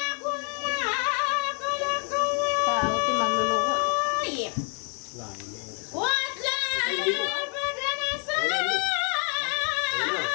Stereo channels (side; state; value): right; quieter; 34.4 dB